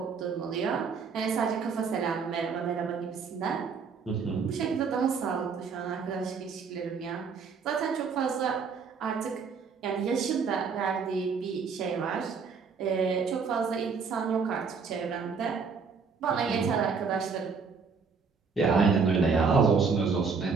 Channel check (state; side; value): quieter; left; 5.4 dB